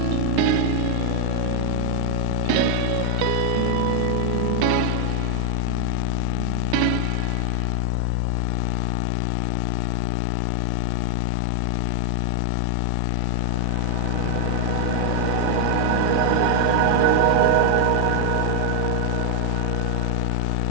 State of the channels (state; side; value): different; both; correlation 0.00